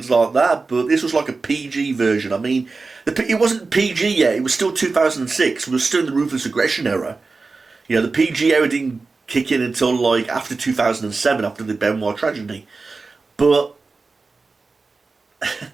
like that. But this was like a PG version. I mean, it wasn't PG yet. It was still 2006. We were still in the Ruthless Aggression era. You know, the PG era didn't kick in until like after 2007, after the Benoit tragedy. But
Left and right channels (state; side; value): quieter; left; 4.0 dB